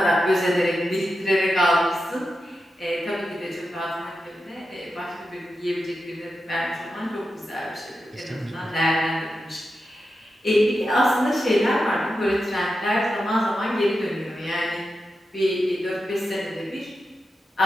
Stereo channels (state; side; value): normal; both; correlation 0.89